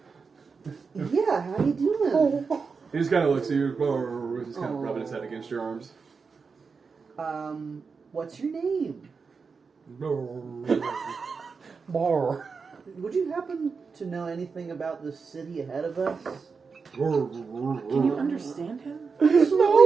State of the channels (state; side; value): quieter; left; 5.1 dB